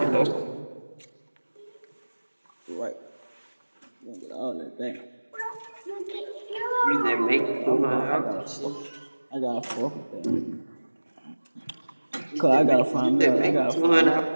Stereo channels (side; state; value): both; inverted; correlation -1.00